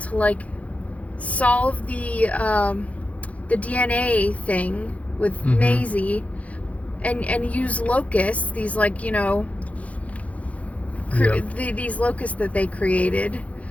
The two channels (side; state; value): right; late; 0.066 ms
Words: like solve the DNA thing with Maisie, and use locusts, these like, you know, these locusts that they created,